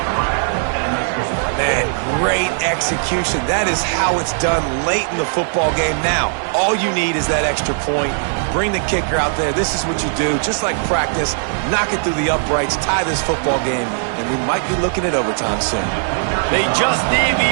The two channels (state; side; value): silent; left; digital silence